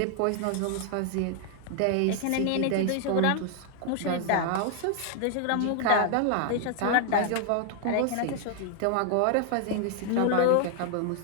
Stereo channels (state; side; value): different; both; correlation 0.00